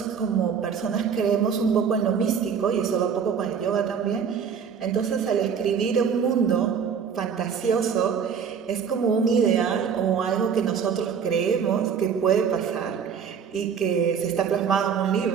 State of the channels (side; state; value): left; quieter; 7.0 dB